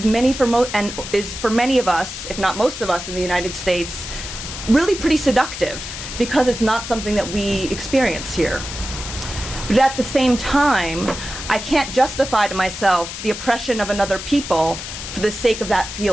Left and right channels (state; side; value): noise; left; hiss, 9 dB below the sound